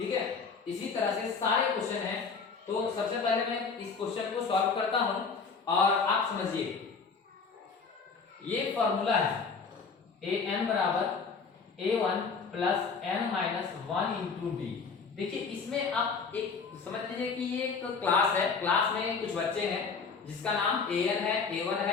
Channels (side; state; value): right; quieter; 5.2 dB